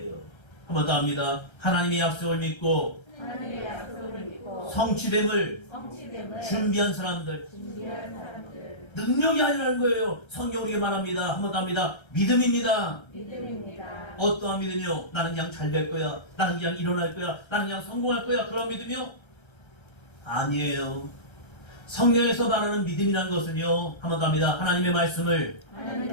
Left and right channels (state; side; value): late; right; 1.3 ms